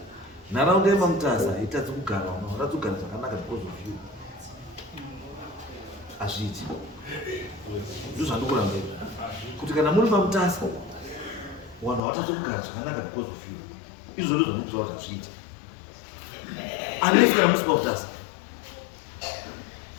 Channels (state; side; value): drops out; right; at 12.0 s